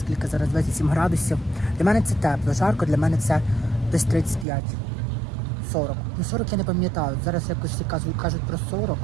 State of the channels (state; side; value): drops out; left; at 4.5 s